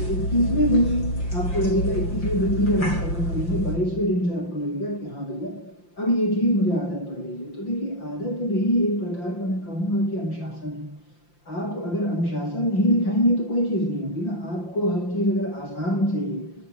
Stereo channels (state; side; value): late; right; 5.8 ms